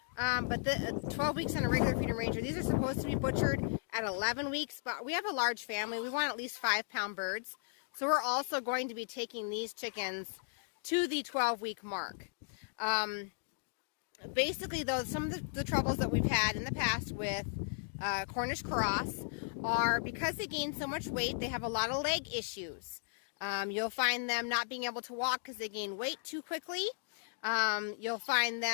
but the 12 weeks on a regular Freedom Ranger. These are supposed to be butchered at 11 weeks, but we have a large family. We want at least 5-pound birds, so we're also going to be taking these chickens to the 12-week mark. Basically, though, some of the troubles that we've had in the past with Cornish Cross are because they gain so much weight, they have a lot of leg issues. You'll find them not being able to walk because they gain weight too quickly. You'll find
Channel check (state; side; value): silent; right; digital silence